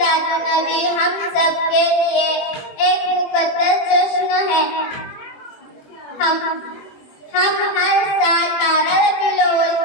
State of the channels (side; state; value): right; late; 21 ms